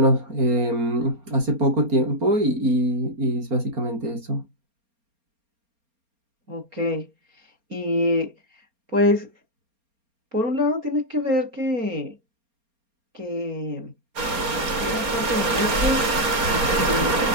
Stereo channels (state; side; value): late; left; 4.3 ms